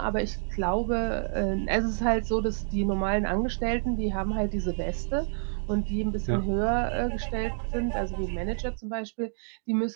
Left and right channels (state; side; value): silent; left; digital silence